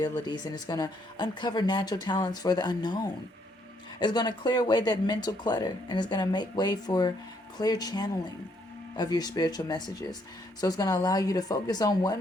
and it's going to uncover natural talents for the unknown. It's going to clear away that mental clutter, and it's going to make way for clear channeling of your spiritual messages. So it's going to allow you to focus on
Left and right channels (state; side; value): normal; both; correlation 0.71